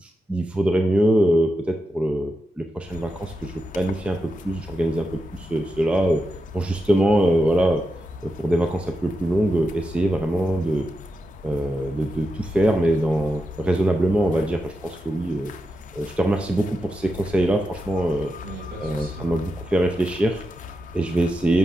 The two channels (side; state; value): both; normal; correlation 0.88